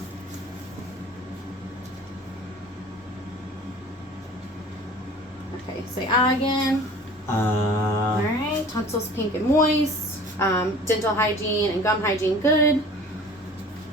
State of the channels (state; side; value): normal; both; correlation 0.45